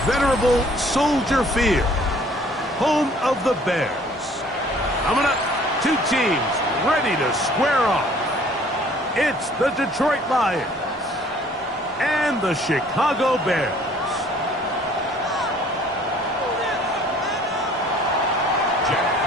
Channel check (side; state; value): both; normal; correlation 0.56